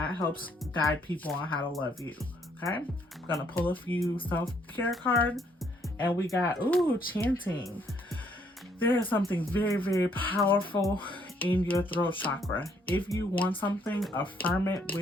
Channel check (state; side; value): normal; both; correlation 0.68